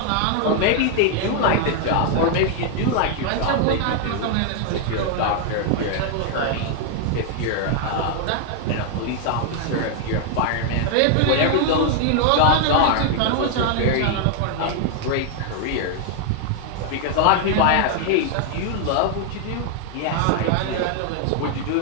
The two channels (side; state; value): both; different; correlation 0.00